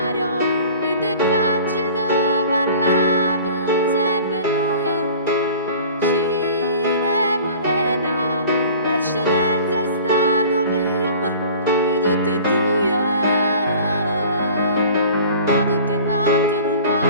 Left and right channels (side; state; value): both; inverted; correlation -0.45